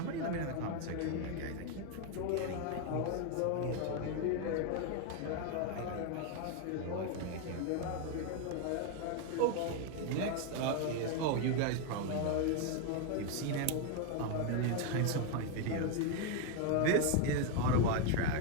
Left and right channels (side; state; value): both; different; correlation 0.01